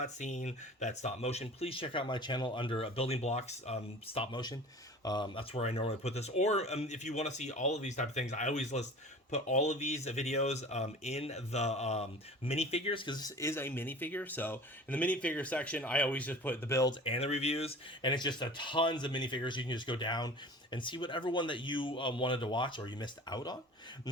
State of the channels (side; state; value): both; normal; correlation 0.41